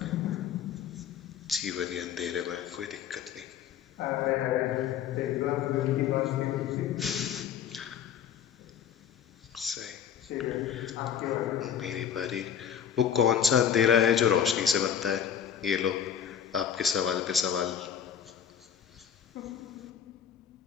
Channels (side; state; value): right; quieter; 8.4 dB